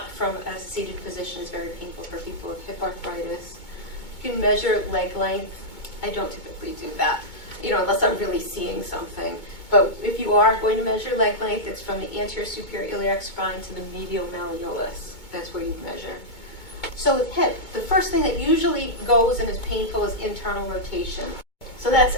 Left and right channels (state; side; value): late; right; 2.2 ms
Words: from a seated position is very painful for people with hip arthritis. You can measure leg length. I don't typically do that, unless I'm really seeing something. But if you are going to measure leg length, it's from the anterior superior iliac spine to the medial malleolus. That's where you measure. So with hip, the first thing that usually goes and is painful is internal rotation. So that's